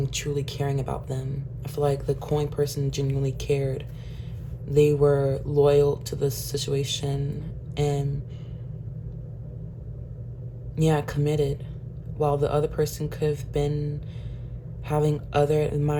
truly caring about them. I feel like the coin person genuinely cared. They were loyal to the situation and committed, while the other person could have been having other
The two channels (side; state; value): both; identical; correlation 1.00